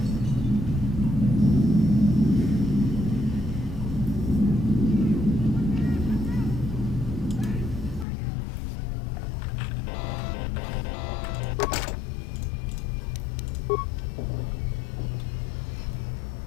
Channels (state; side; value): drops out; right; at 8.1 s